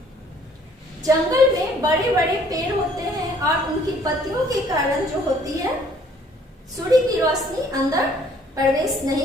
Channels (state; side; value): normal; both; correlation 0.60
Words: जंगल में बड़े बड़े पेड़ होते हैं और उनकी पत्तियों के कारण जो होती है सूर्य की रोशनी अंदर प्रवेश